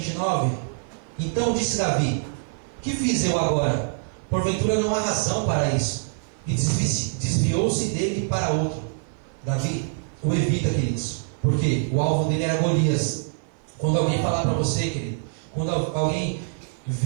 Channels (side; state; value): left; silent; 55 dB below the other